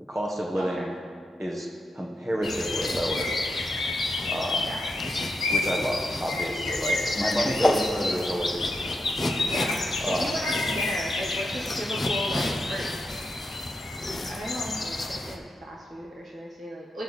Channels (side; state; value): both; normal; correlation 0.85